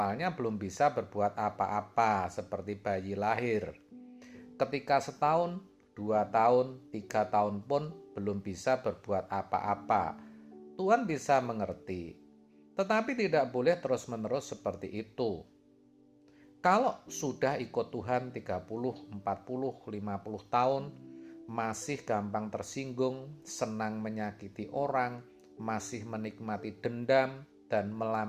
belum bisa berbuat apa-apa seperti bayi lahir. Ketika setahun, 2 tahun, 3 tahun pun belum bisa berbuat apa-apa. Tuhan bisa mengerti. Tetapi tidak boleh terus-menerus seperti itu. Kalau sudah ikut Tuhan 30, 40, 50 tahun, masih gampang tersinggung, senang menyakiti orang, masih menikmati dendam dan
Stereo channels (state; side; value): identical; both; correlation 1.00